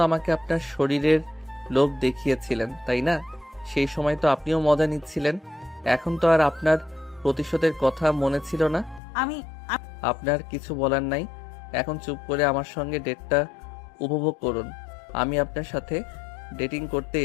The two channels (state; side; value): drops out; right; at 9.0 s